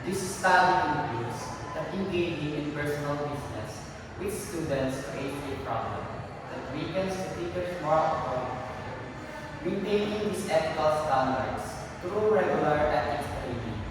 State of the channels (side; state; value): both; identical; correlation 1.00